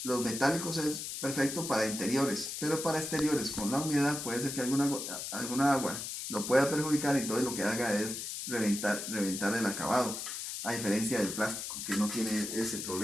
Los metálicos es perfecto para interiores, pero para exteriores con la humedad puede ser que alguna agua lo pueda perjudicar y entonces lo que haga es reventar el acabado, a diferencia del plástico que no tiene ese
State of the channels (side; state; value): left; noise; hiss, 6 dB below the sound